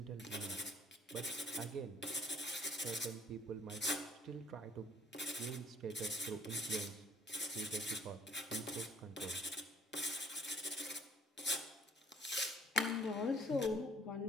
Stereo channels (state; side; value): normal; both; correlation 0.57